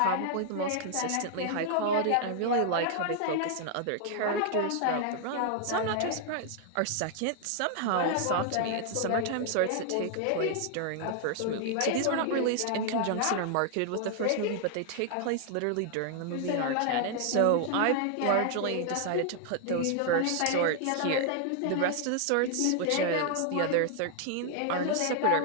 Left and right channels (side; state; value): both; different; correlation 0.00